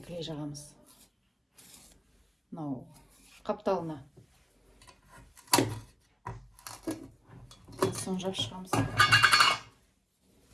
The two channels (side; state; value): both; identical; correlation 1.00